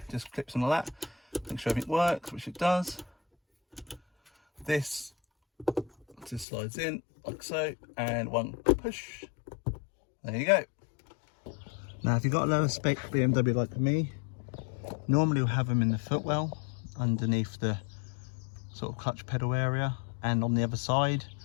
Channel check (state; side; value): drops out; right; at 6.5 s